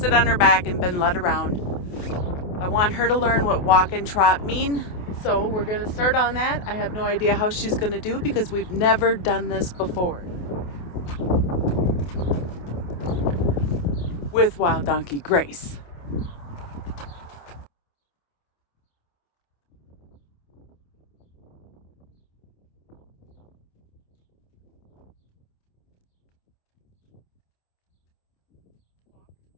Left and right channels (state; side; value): late; right; 28 ms